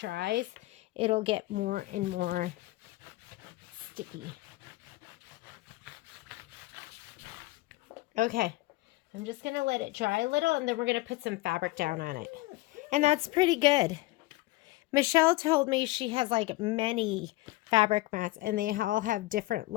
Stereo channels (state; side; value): quieter; right; 19.8 dB